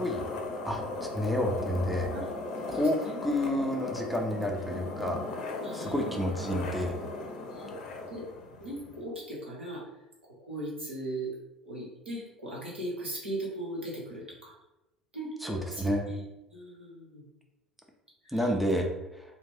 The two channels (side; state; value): both; normal; correlation 0.60